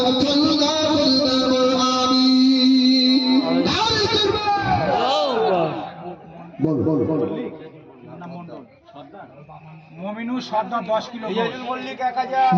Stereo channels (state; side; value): identical; both; correlation 1.00